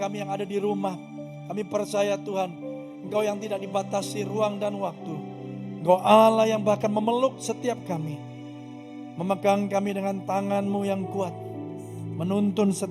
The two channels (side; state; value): both; identical; correlation 1.00